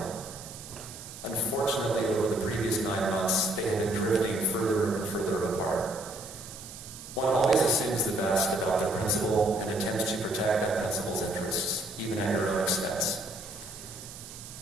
Unfortunately, over the previous 9 months, they have been drifting further and further apart. One always assumes the best about the principle and intends to protect that principle's interests, even at your own expense.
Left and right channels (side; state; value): right; noise; hiss, 14 dB below the sound